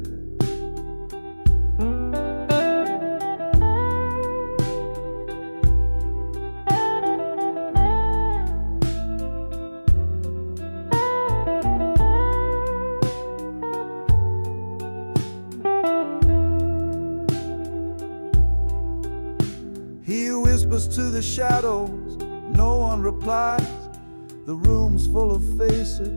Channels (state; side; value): inverted; both; correlation -1.00